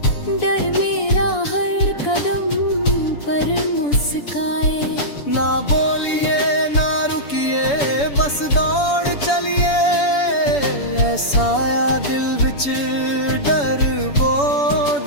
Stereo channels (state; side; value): late; right; 7.0 ms